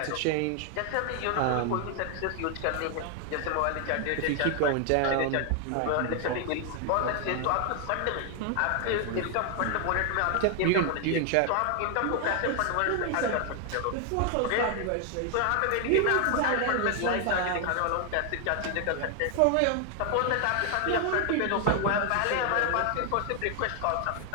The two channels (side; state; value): both; different; correlation 0.00